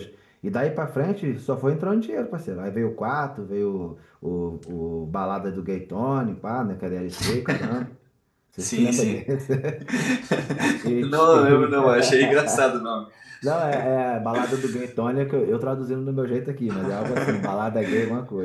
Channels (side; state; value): both; identical; correlation 1.00